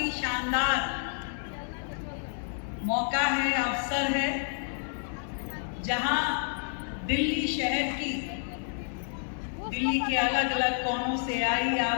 शानदार मौका है, अवसर है, जहां दिल्ली शहर की, दिल्ली के अलग अलग कोनों से आई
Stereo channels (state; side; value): silent; right; 58 dB below the other